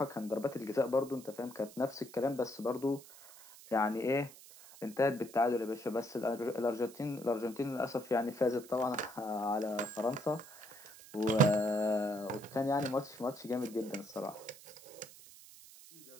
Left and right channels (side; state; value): right; noise; hiss, 19 dB below the sound